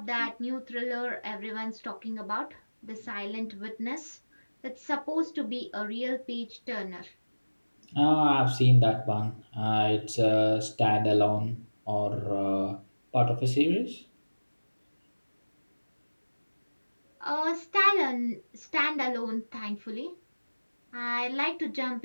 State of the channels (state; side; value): inverted; both; correlation -1.00